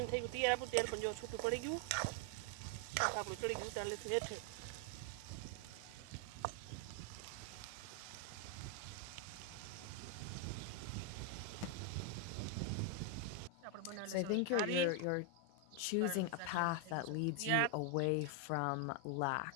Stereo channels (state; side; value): different; both; correlation 0.01